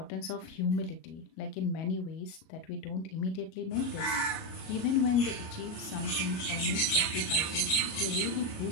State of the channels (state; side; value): late; right; 37 ms